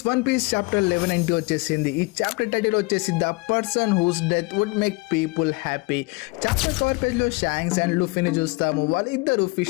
one piece chapter 11 వచ్చేసింది. ఈ చాప్టర్ టైటిల్ వచ్చేసి the person whose death would make people happy. Chapter cover page లో షాంక్స్ అండ్ లూఫీని చూస్తాము. వాళ్ళిద్దరు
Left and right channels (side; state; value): right; quieter; 26.2 dB